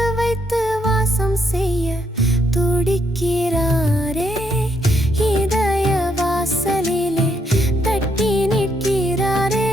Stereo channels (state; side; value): normal; both; correlation 0.75